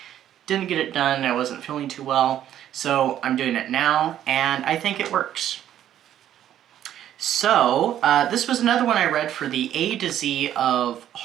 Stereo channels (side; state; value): left; quieter; 11.2 dB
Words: Didn't get it done, I wasn't feeling too well, so I'm doing it now, and I think it works. So, this was another one I read for the A to Z of